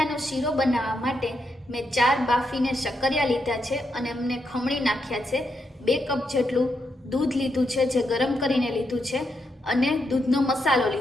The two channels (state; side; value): normal; both; correlation 0.82